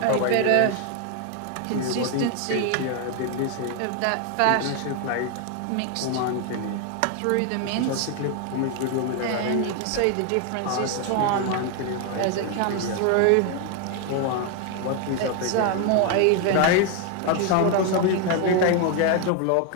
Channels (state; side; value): different; both; correlation 0.01